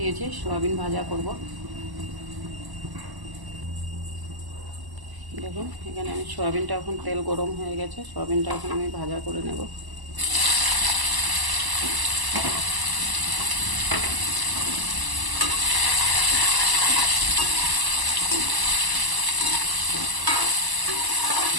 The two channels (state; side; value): late; left; 1.0 ms